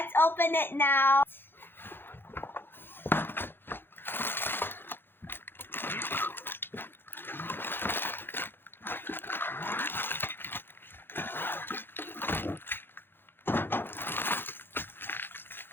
open it now.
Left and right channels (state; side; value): late; right; 0.10 ms